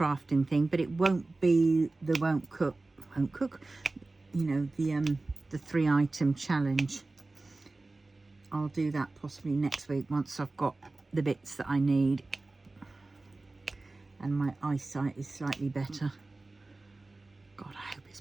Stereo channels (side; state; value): left; quieter; 3.2 dB